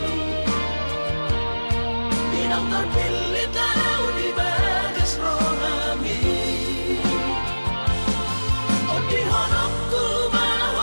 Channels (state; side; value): inverted; both; correlation -1.00